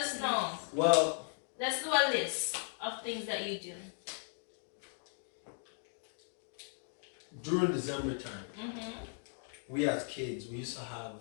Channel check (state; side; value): silent; right; 53 dB below the other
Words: know. Well, Let's do a list of things that you do. during December time, Mm-hmm. we as kids, we used to have